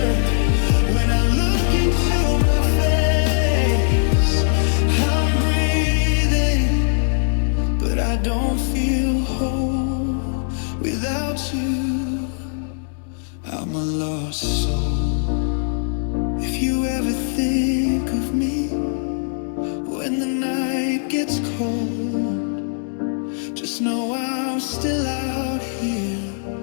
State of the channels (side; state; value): right; silent; digital silence